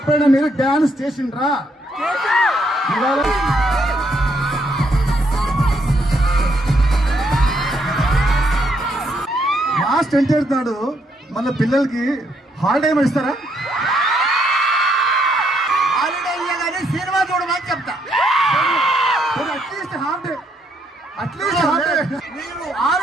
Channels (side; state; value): both; normal; correlation 0.73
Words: మీరు డాన్స్ చేసిండ్రా? లాస్ట్ ఎంటర్ నాడు మళ్ళీ పిల్లలకి హాలిడే ఏమైనా ఇస్తారా? హాలిడే ఇయ్యగానే సినిమా చూడమని చెప్తా. At least half day, at least half day. మీరు